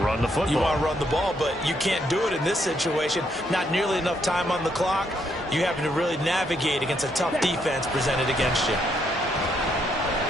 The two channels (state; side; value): normal; both; correlation 0.74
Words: Run the football. You want to run the ball, but you can't do it in this situation. Not nearly enough time on the clock. You having to really navigate against a tough defense presented against you.